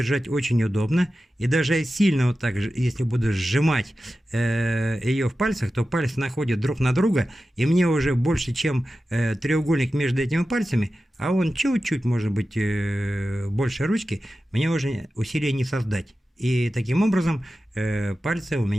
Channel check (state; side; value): normal; both; correlation 0.93